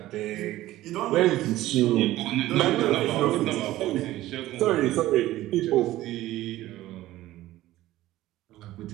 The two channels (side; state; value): left; quieter; 15.6 dB